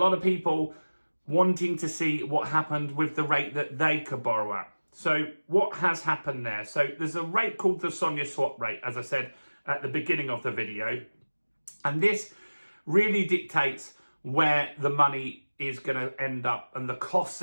of people wanting to see what happened with the rate that they could borrow at. So what has happened there? So there's a rate called the Sonia swap rate, as I said at the beginning of the video. And this really dictates where the money is going to end up and the costs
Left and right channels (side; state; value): both; inverted; correlation -1.00